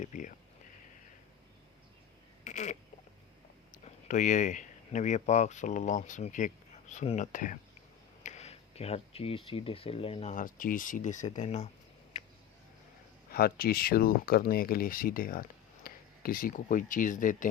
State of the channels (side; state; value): right; quieter; 9.7 dB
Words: پیا۔ تو یہ نبی پاک صلی اللہ علیہ وسلم کی ایک سنت ہے کہ ہر چیز سیدھے سے لینا، ہر چیز سیدھے سے دینا، ہر چیز شروع کرنے کے لیے سیدھے ہاتھ۔ کسی کو کوئی چیز